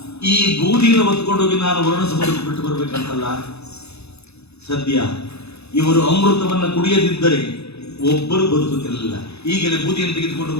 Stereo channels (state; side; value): late; right; 0.79 ms